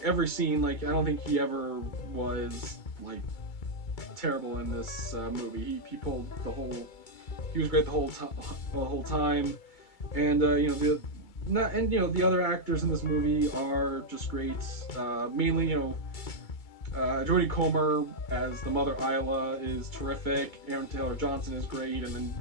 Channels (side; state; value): right; late; 2.3 ms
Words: every scene. Like I don't think he ever was like terrible in this movie. He pulled the whole. He was great the whole time, and the other actors in this movie are just great. Mainly Jodie Comer as the mother Isla is terrific. Aaron Taylor Johnson is great, and then